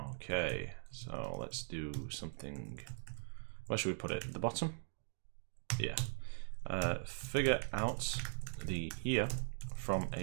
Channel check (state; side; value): silent; left; digital silence